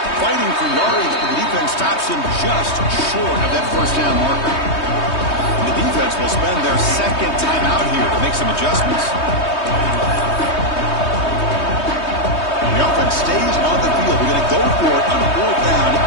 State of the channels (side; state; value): right; late; 3.2 ms